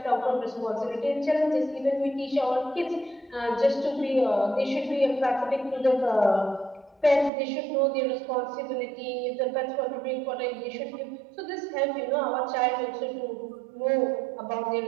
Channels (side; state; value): left; drops out; at 7.3 s